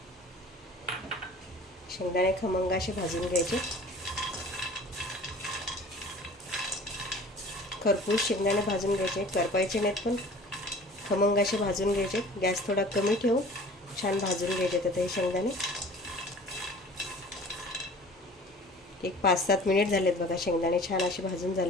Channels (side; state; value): both; normal; correlation 0.45